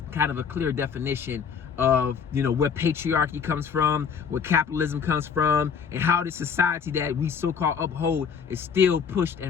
kind of a clear definition of where patriarchy comes from, where capitalism comes from, and how the society that we so-called uphold is still pushed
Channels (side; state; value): right; quieter; 6.6 dB